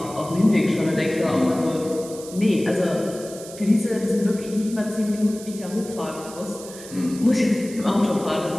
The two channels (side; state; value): right; noise; hiss, 15 dB below the sound